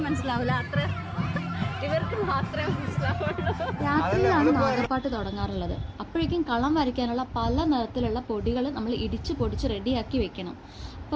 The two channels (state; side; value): identical; both; correlation 1.00